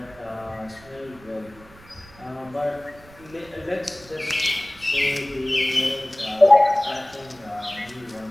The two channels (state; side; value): noise; right; rumble, 24 dB below the sound